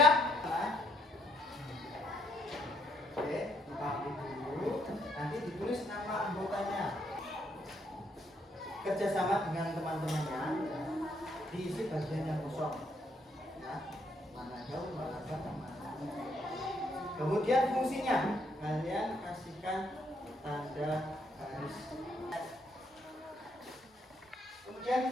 Oke, dipahami dulu. Nanti ditulis nama anggotanya. Kerjasama dengan teman-temannya, diisi bagian yang kosong. Ya, mana jauh, mana dekat, mana. Kemudian fungsinya, kalian kasihkan tanda garis.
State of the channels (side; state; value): both; normal; correlation 0.72